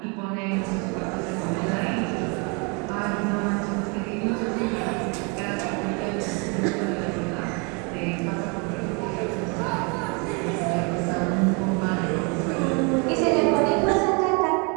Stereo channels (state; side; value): quieter; left; 32.8 dB